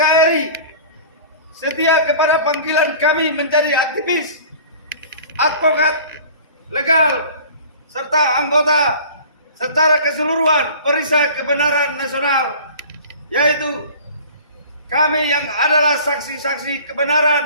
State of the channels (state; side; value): inverted; both; correlation -0.44